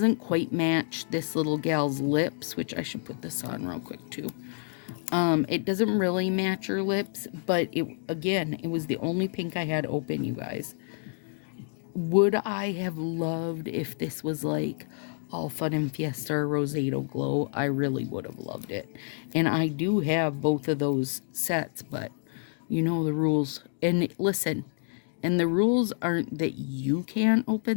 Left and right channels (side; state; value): right; silent; digital silence